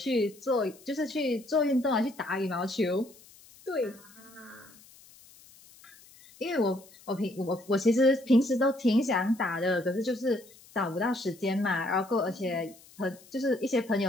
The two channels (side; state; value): left; noise; hiss, 24 dB below the sound